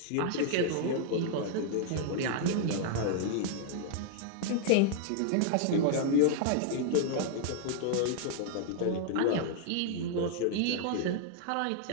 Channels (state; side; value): different; both; correlation 0.00